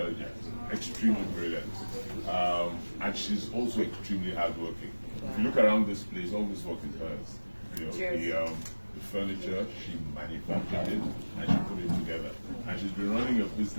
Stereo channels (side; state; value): both; inverted; correlation -1.00